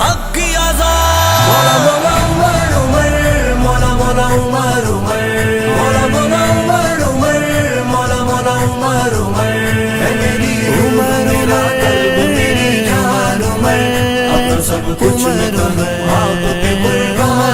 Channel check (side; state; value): both; identical; correlation 1.00